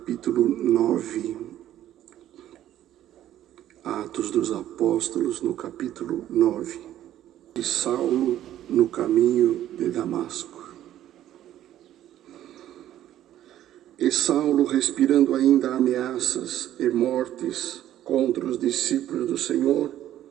9, Atos dos Apóstolos, no capítulo 9, de Saulo no caminho de Damasco. E Saulo, respirando ainda ameaças e mortes contra os discípulos do Senhor,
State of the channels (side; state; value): left; quieter; 12.3 dB